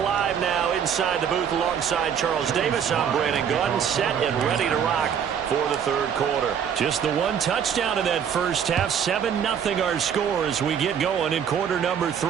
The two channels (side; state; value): left; quieter; 8.0 dB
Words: now inside the booth alongside Charles Davis. I'm Brandon Gunn, set and ready to rock for the third quarter. Just the one touchdown in that first half. 7-0 our score as we get going in quarter number